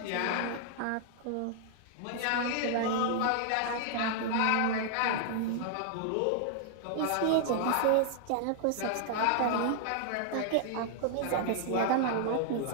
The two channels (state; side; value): different; both; correlation 0.00